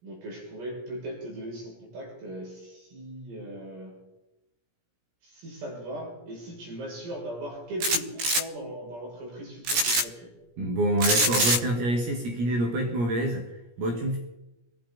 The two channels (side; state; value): left; late; 17 ms